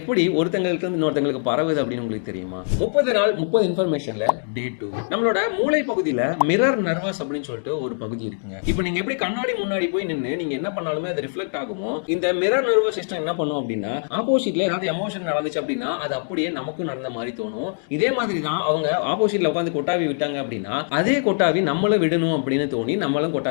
ஒருத்தங்கள்ட்ட இருந்து இன்னொருத்தங்களுக்கு பரவுது அப்படின்னு உங்களுக்கு தெரியுமா? 30 நாள் 30 இன்ஃபர்மேஷன்ல டே 2. நம்மளோட மூளை பகுதியில மிரர் நர்வஸ் அப்படின்னு சொல்லிட்டு ஒரு பகுதி இருக்குங்க. இப்ப நீங்க எப்படி கண்ணாடி முன்னாடி போய் நின்னு நீங்க என்ன பண்ணாலுமே அது ரிஃப்ளெக்ட் ஆகுமோ, இந்த மிரர் நர்வஸ் சிஸ்டம் என்ன பண்ணும் அப்படின்னா, ஆப்போசிட்ல ஏதாவது எமோஷன் நடந்துச்சு அப்படின்னா, அது அப்படியே நமக்கும் நடந்த மாதிரி தோணும். இதே மாதிரி தான் அவங்க ஆப்போசிட்ல உட்கார்ந்து கொட்டாவி விட்டாங்க அப்படின்னா, அதே கொட்டாவி நம்மளும் விடணும் அப்படின்னு தோணி நம்மளும்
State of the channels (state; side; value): silent; right; digital silence